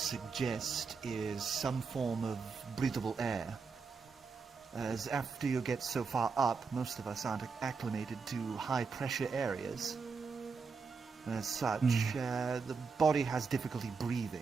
is some form of breathable air. As after you get so far up, most of us aren't acclimated to high-pressure areas. As such, the body has difficulty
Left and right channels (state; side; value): quieter; left; 5.0 dB